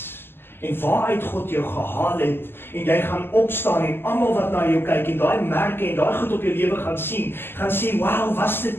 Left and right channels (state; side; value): late; right; 0.11 ms